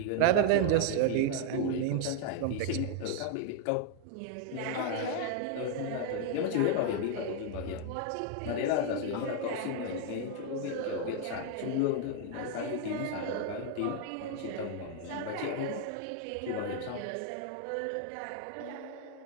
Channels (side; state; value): both; different; correlation 0.00